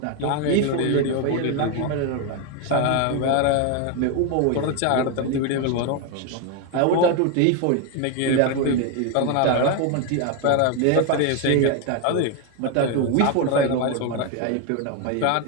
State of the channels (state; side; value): different; both; correlation 0.01